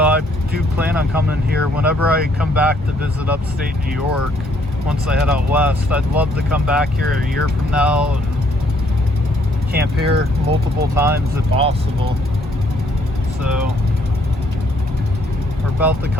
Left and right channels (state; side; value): normal; both; correlation 0.67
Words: I do plan on coming here whenever I come back to visit upstate New York. Once I head out west, I'd love to come back here a year from now and camp here multiple times if possible. So we're about to